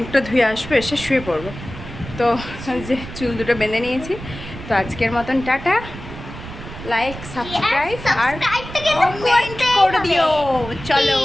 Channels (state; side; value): noise; right; rumble, 12 dB below the sound